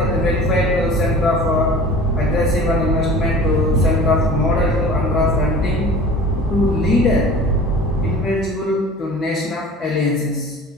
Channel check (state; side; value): normal; both; correlation 0.41